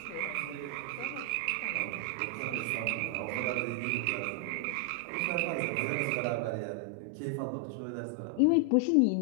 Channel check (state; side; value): different; both; correlation 0.00